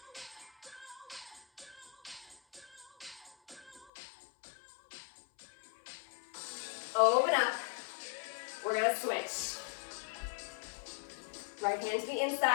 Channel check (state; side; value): drops out; right; at 3.9 s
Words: Open up. We're gonna switch. Right hand to the